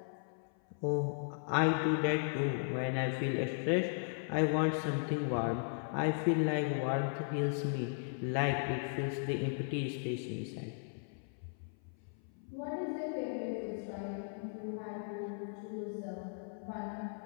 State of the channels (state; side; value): silent; right; 53 dB below the other